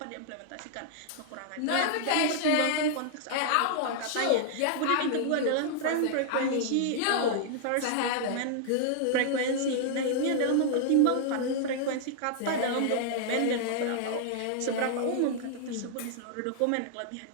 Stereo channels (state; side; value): different; both; correlation -0.01